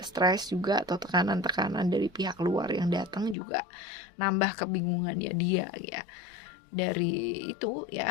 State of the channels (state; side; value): drops out; right; at 3.4 s